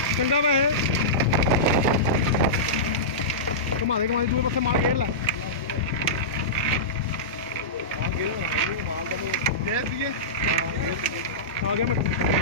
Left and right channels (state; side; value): normal; both; correlation -0.17